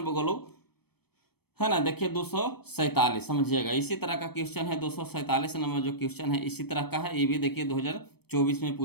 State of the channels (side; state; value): right; late; 0.97 ms